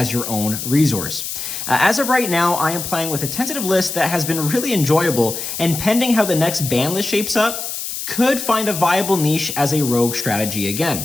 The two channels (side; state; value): left; noise; hiss, 6 dB below the sound